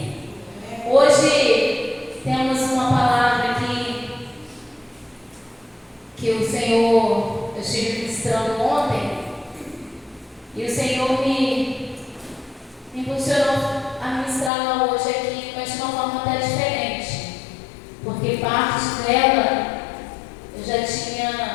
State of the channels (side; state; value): right; drops out; at 14.5 s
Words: Hoje temos uma palavra aqui que o Senhor, eu estive ministrando ontem, e o Senhor me impulsionou a ministrá-la hoje aqui, mas de uma forma até diferente, porque parte dela eu já